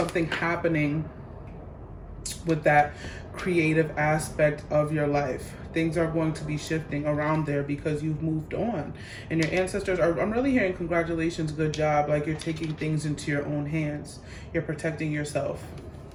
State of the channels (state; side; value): identical; both; correlation 1.00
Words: happening with that creative aspect of your life. Things are going to be shifting around there because you've moved on. And your ancestors are, I'm really hearing congratulations, good job. Like you're taking things into your own hands. You're protecting yourself.